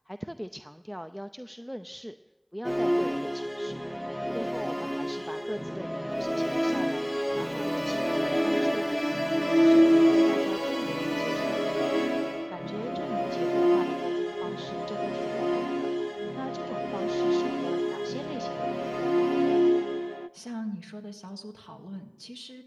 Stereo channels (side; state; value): both; identical; correlation 1.00